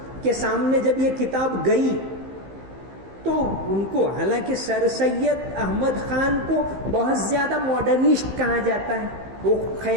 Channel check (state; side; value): late; left; 15 ms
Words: کے سامنے جب یہ کتاب گئی تو ان کو، حالانکہ سر سید احمد خان کو بہت زیادہ ماڈرنسٹ کہا جاتا ہے، وہ